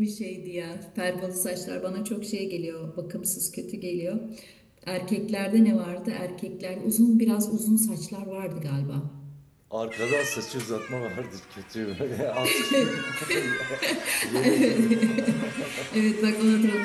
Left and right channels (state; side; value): identical; both; correlation 1.00